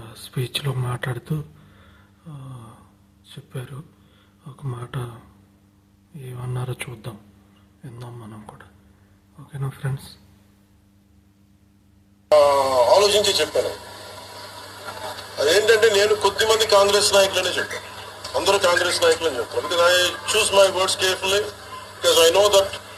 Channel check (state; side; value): identical; both; correlation 1.00